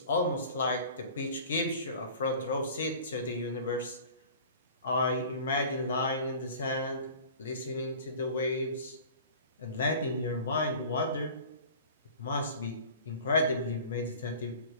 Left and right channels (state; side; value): inverted; both; correlation -0.43